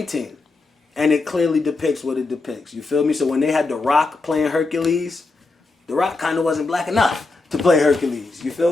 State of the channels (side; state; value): right; quieter; 3.6 dB